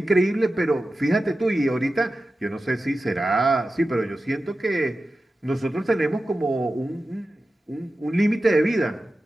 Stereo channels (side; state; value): both; normal; correlation 0.93